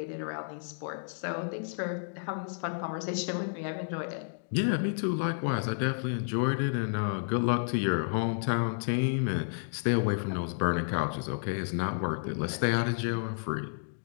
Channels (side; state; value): right; silent; digital silence